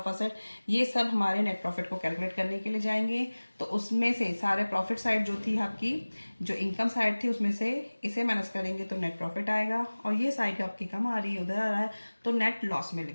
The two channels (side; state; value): both; inverted; correlation -1.00